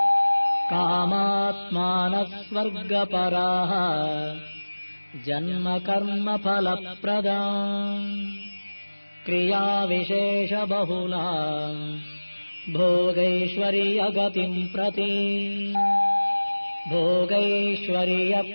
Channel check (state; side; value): inverted; both; correlation -1.00